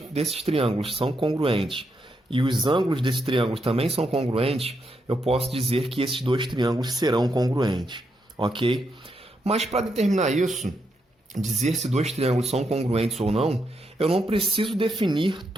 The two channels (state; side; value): normal; both; correlation 0.81